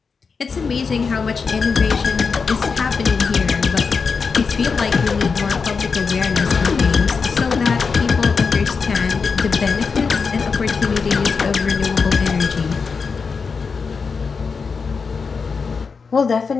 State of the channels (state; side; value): quieter; right; 5.2 dB